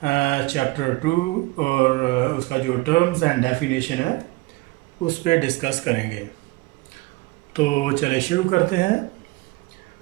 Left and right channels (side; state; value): left; quieter; 21.9 dB